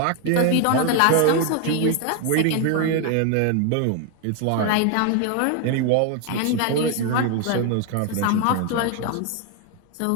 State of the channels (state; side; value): different; both; correlation 0.01